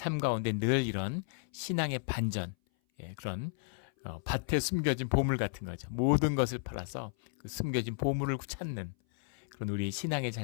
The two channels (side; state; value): right; silent; 55 dB below the other